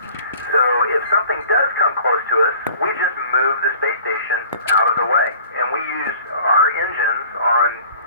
So if something does come close to us, we just move the space station out of the way. And we use our engines on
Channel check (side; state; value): both; inverted; correlation -0.50